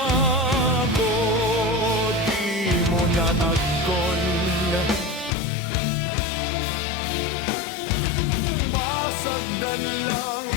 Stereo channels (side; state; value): right; drops out; at 5.3 s